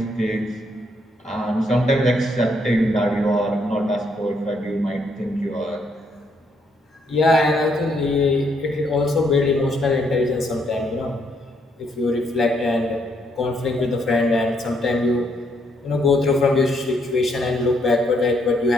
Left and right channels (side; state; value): both; normal; correlation 0.73